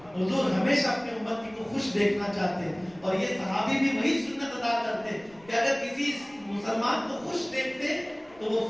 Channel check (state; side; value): noise; left; rumble, 28 dB below the sound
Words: حضور ہمیشہ اپنی امتی کو خوش دیکھنا چاہتے ہیں، اور یہ صحابی بھی وہی سنت ادا کرتے کہ اگر کسی مسلمان کو خوش دیکھتے تو وہ